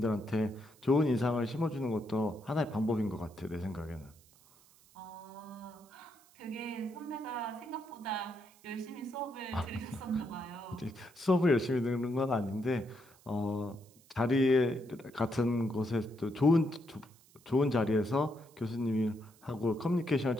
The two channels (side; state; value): right; noise; hiss, 28 dB below the sound